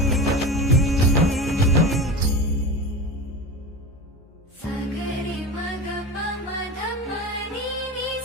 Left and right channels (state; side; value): normal; both; correlation 0.27